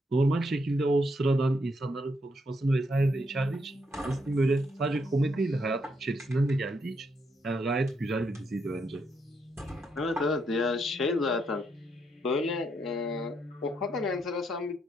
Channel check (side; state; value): both; normal; correlation 0.77